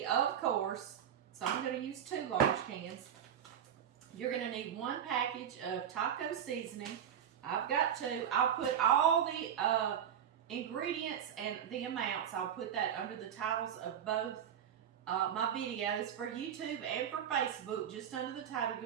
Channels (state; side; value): quieter; left; 9.1 dB